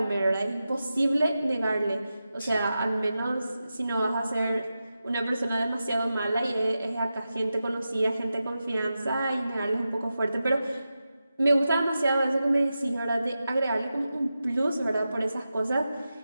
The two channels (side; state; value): both; inverted; correlation -0.91